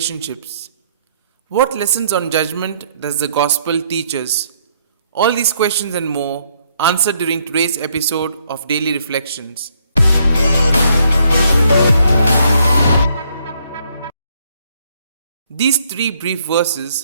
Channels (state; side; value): inverted; both; correlation -0.70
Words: What lessons on judgment does the gospel teach us? All these questions and more answered during today's episode of Daily Reflections. These three brief